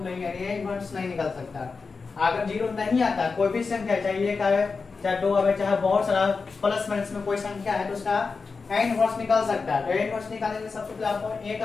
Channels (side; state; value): right; quieter; 4.6 dB